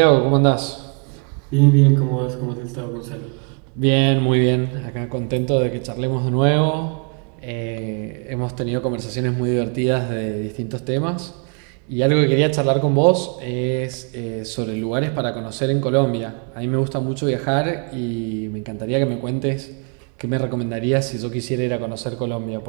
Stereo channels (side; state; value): left; quieter; 38.1 dB